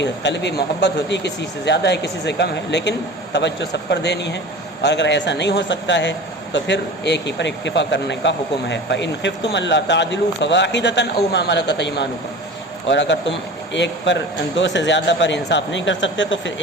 قلبی محبت ہوتی ہے، کسی سے زیادہ ہے کسی سے کم ہے، لیکن توجہ سب پر دینی ہے، اور اگر ایسا نہیں ہو سکتا ہے تو پھر ایک ہی پر اکتفا کرنے کا حکم ہے۔ فَإِنْ خِفْتُمْ أَلَّا تَعْدِلُوا فَوَاحِدَةً أَوْ مَا مَلَكَتْ أَيْمَانُكُمْ، اور اگر تم ایک پر، دو سے زیادہ پر انصاف نہیں کر سکتے تو پھر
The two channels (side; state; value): both; normal; correlation 0.36